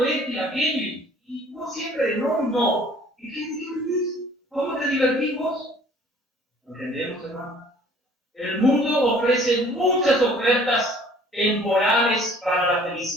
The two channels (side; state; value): both; normal; correlation 0.54